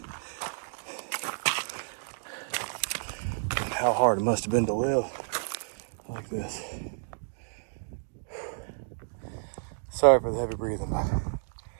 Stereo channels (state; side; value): silent; left; digital silence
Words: and how hard it must have been to live like this. Sorry for the heavy breathing, but